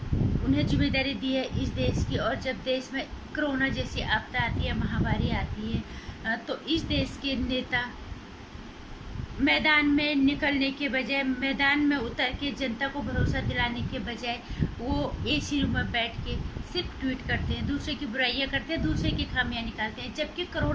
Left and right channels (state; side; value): identical; both; correlation 1.00